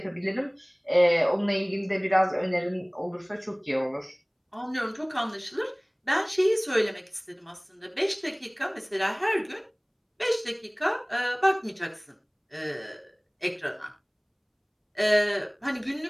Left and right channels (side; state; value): both; identical; correlation 1.00